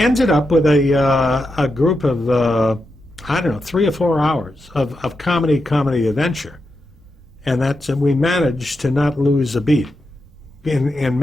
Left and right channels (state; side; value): normal; both; correlation 0.87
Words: up with a group of I don't know, 3 or 4 hours of comedy adventure, and we managed to not lose a beat in